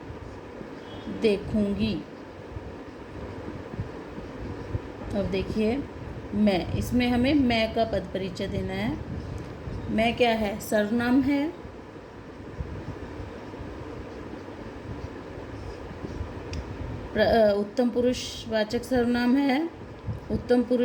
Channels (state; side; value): identical; both; correlation 1.00